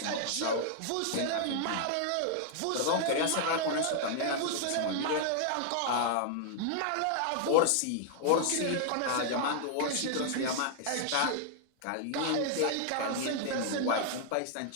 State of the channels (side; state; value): both; different; correlation 0.00